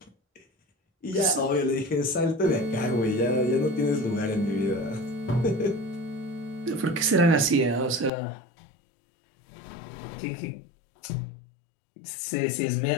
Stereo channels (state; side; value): drops out; right; at 8.1 s